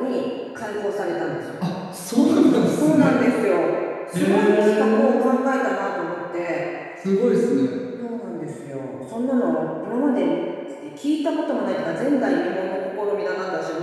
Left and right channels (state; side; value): identical; both; correlation 1.00